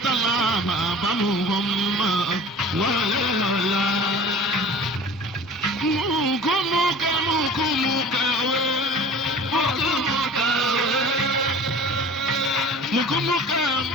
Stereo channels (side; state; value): both; normal; correlation 0.42